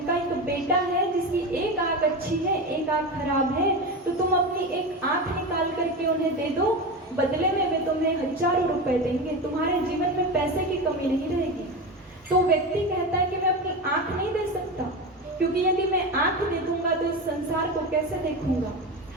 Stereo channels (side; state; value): both; normal; correlation 0.22